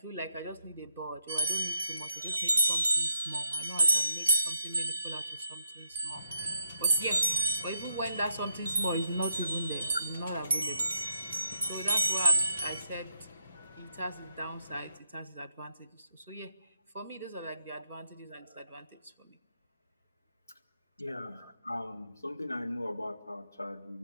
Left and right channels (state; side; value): inverted; both; correlation -0.83